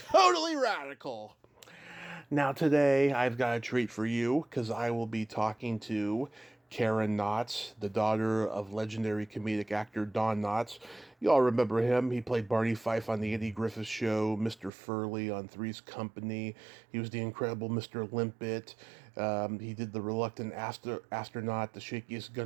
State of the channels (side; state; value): left; drops out; at 14.7 s